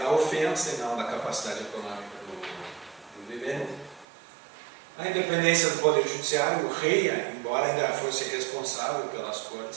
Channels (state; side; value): drops out; left; at 4.0 s